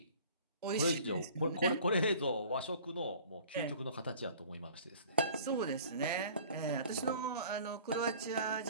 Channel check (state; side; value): inverted; both; correlation -0.48